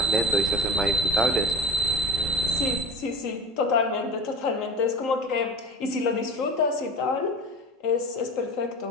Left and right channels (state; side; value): normal; both; correlation 0.32